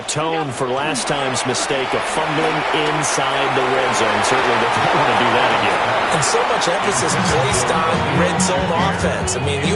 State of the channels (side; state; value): both; identical; correlation 1.00